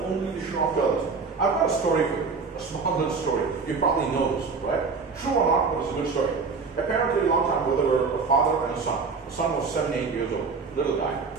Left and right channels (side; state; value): left; quieter; 4.8 dB